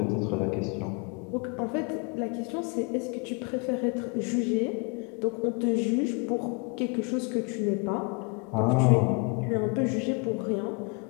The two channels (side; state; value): right; quieter; 32.6 dB